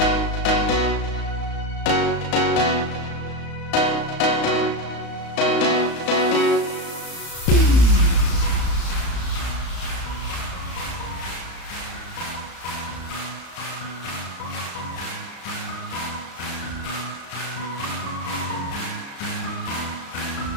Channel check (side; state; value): right; late; 35 ms